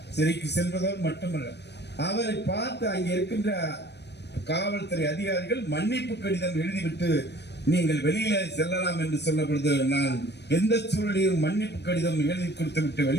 சிறைக்கு சென்றதோடு மட்டுமல்ல, அவரை பார்த்து அங்கே இருக்கின்ற காவல்துறை அதிகாரிகள் மன்னிப்பு கடிதம் எழுதிவிட்டு நீங்கள் வெளியில செல்லலாம் என்று சொன்ன பொழுது, நான் எந்த சூழலையும் மன்னிப்பு கடிதம் எழுதி கொடுத்து விட்டு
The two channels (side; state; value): right; late; 0.50 ms